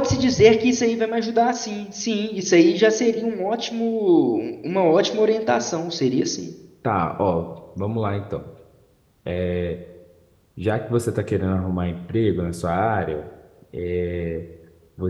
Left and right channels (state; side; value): identical; both; correlation 1.00